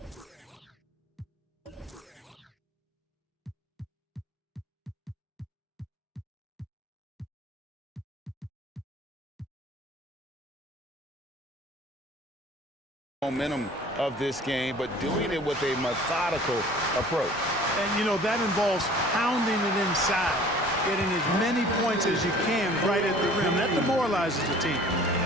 momentum of this game, but doing it with a methodical approach. And, you know, that involves pounding it inside, getting as many points as you can right at the rim. That demoralizes the team.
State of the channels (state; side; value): normal; both; correlation 0.49